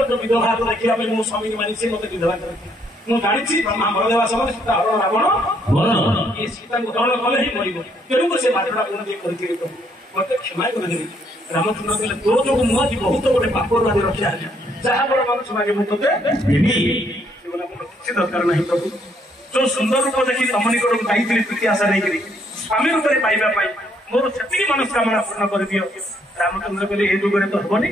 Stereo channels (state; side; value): normal; both; correlation 0.70